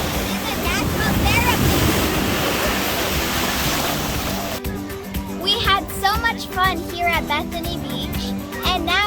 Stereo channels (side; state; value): both; identical; correlation 1.00